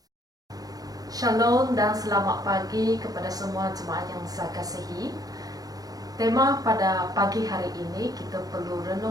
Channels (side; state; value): left; late; 0.18 ms